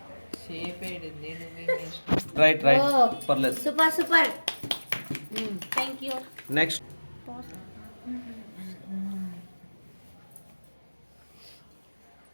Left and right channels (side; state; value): both; inverted; correlation -1.00